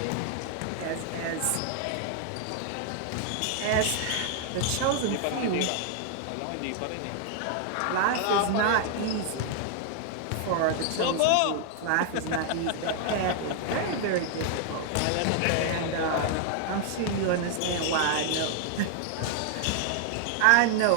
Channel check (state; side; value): different; both; correlation 0.00